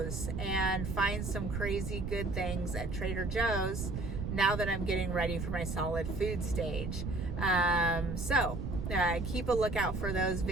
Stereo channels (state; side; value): noise; right; rumble, 4 dB below the sound